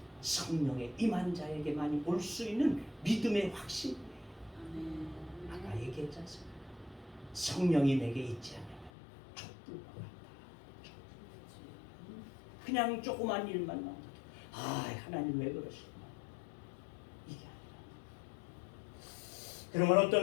성령의 임한 자에게만이 올 수 있는 믿음의 확신이에요. 아까 얘기했지 않습니까? 성령이 내게 있지 않으면 촛불과 같다. 그냥 조그만 일만 나오도 하나님 왜 그러시구나 이게 아니라 그러면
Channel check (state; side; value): drops out; right; at 8.9 s